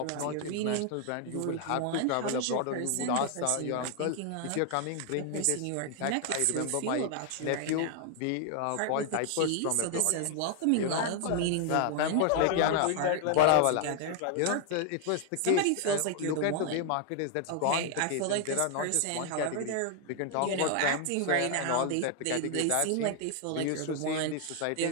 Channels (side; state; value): both; different; correlation 0.00